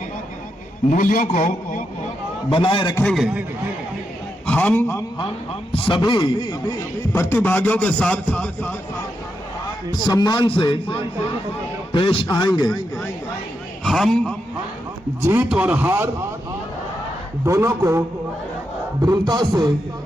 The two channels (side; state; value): both; normal; correlation 0.84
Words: मूल्यों को बनाए रखेंगे। हम सभी प्रतिभागियों के साथ सम्मान से पेश आएंगे। हम जीत और हार दोनों को दृढ़ता से